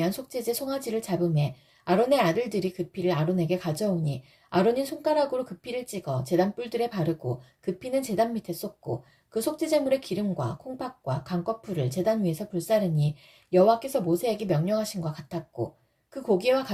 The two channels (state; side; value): identical; both; correlation 1.00